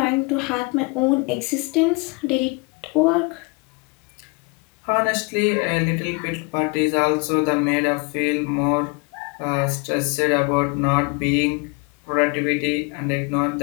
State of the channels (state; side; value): quieter; right; 30.3 dB